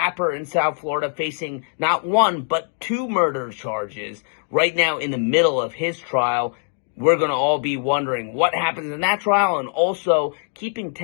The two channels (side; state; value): right; silent; digital silence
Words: in South Florida, facing not 1, but 2 murder charges right now in the middle of his trial. We're going to all be wondering what happens in that trial, and also keeping